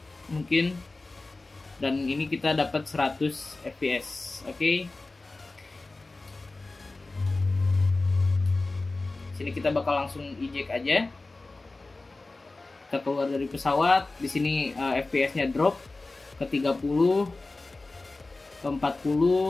mungkin. Dan ini kita dapat 100 fps. Oke. Sini kita bakal langsung eject aja. Kita keluar dari pesawat. Di sini FPS-nya drop ke 30, ke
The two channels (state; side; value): quieter; right; 3.3 dB